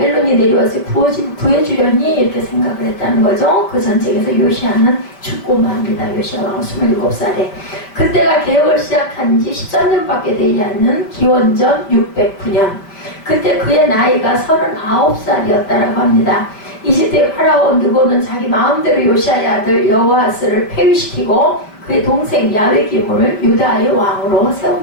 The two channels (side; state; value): right; late; 5.0 ms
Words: 내려와서 구해주려니 이렇게 생각을 했다는 거죠. 그 전쟁에서 요시야는 죽고 맙니다. 요시야 왕 27살에. 그때가 개혁을 시작한 지 13년밖에 되지 않는 기원전 609년. 그때 그의 나이가 39살이었다고 합니다. 이집트의 파라오 느고는 자기 마음대로 요시야의 아들 여호아스를 폐위시키고 그의 동생 야외기문을 유다의 왕으로